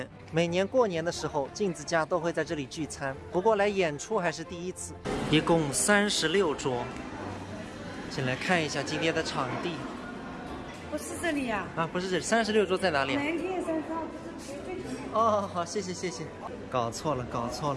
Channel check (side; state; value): both; identical; correlation 1.00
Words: 每年过年的时候，镜子家都会在这里聚餐，不过来演出还是第一次。 一共36桌，先来看一下今天的场地。不是这里呀？啊，不是这里，36桌在哪里？南天山上不是最前面。哦，好，谢谢谢谢。搞错了，搞错